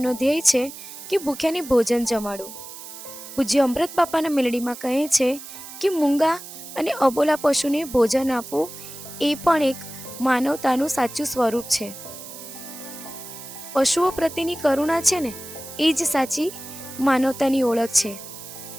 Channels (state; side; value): noise; right; hiss, 13 dB below the sound